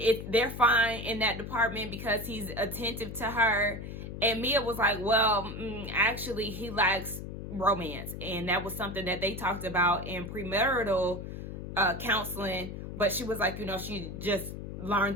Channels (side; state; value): left; noise; hum, 8 dB below the sound